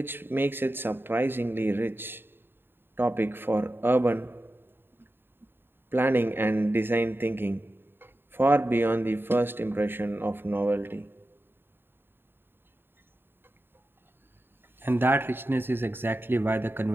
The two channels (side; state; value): left; late; 0.10 ms